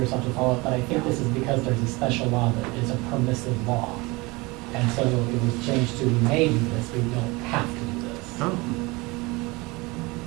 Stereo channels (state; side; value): quieter; left; 24.3 dB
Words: have to follow up, but I think this is because there's a special law that is a permissive law. And so it was changed to, we may do this, we don't have to do Oh.